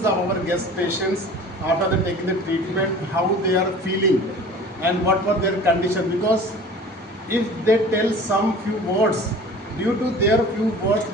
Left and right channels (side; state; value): both; normal; correlation 0.43